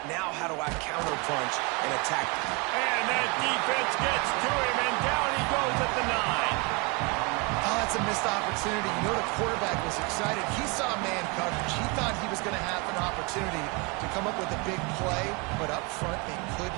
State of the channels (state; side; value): quieter; left; 29.1 dB